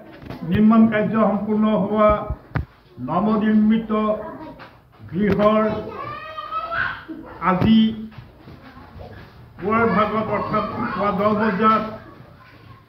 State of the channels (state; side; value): identical; both; correlation 1.00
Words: নিৰ্মাণ কাৰ্য সম্পূৰ্ণ হোৱা নৱনিৰ্মিত গৃহৰ আজি পুৱাৰ ভাগত অৰ্থাৎ পুৱা 10 বজাত